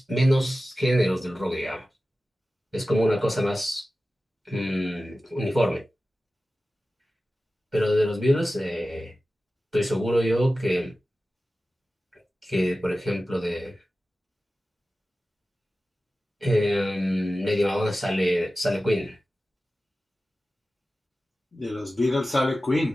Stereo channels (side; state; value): both; normal; correlation 0.95